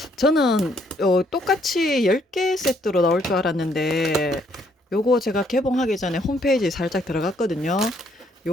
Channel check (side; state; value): both; normal; correlation 0.69